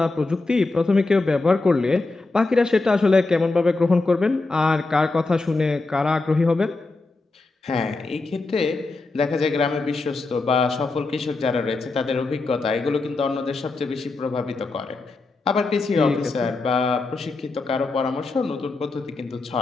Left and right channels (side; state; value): right; quieter; 3.4 dB